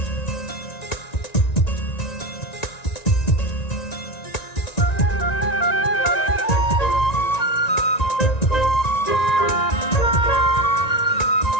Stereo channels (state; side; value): late; right; 1.9 ms